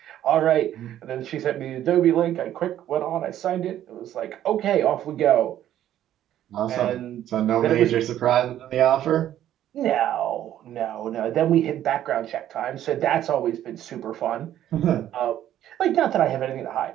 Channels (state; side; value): quieter; left; 11.9 dB